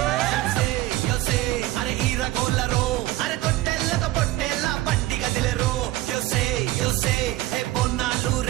యోసే అరే ఈరగోళ్ళరో అరే తొట్టెల్లతో పొట్టెల్ల బండి గదిలెరో. యోసే హే బొన్నాలు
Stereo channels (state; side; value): quieter; left; 16.5 dB